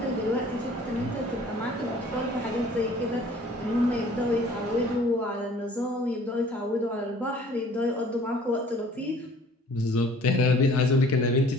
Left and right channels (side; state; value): both; normal; correlation 0.52